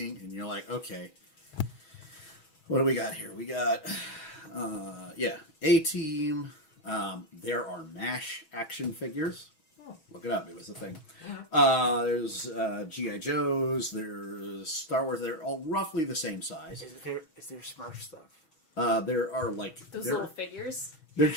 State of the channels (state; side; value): late; right; 6.2 ms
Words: and you're like, okay, what do we got here? We got, A-Team. There are MASH action figures. Look it up. It was a thing. There's G.I. Joes. There's Star Wars. They're all roughly the same size. Is there Smurf stuff? There are like... Those little figures. They're